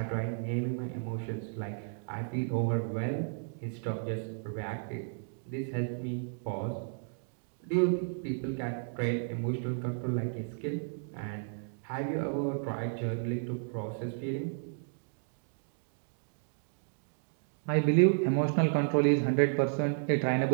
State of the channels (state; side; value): silent; left; digital silence